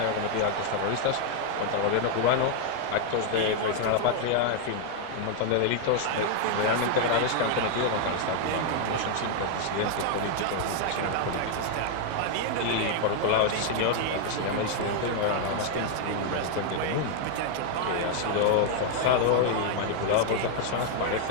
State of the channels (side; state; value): both; different; correlation 0.00